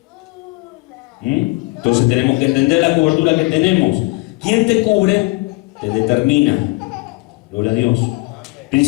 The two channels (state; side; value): quieter; right; 24.8 dB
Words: Entonces tenemos que entender la cobertura que tenemos. Quien te cubre, te determina. Gloria a Dios.